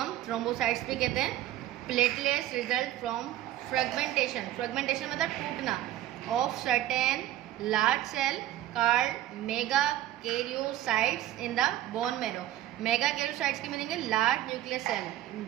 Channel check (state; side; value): quieter; left; 13.5 dB